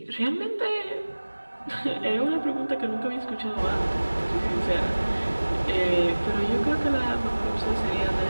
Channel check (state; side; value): inverted; both; correlation -1.00